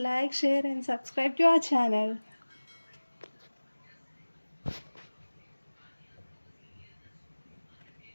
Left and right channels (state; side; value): inverted; both; correlation -1.00